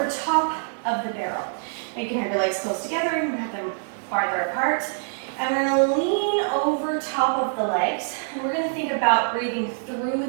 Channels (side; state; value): left; silent; digital silence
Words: top of the barrel. Now you can have your legs close together, you can have them farther apart. And we're going to lean over top of the legs, and we're going to think about breathing through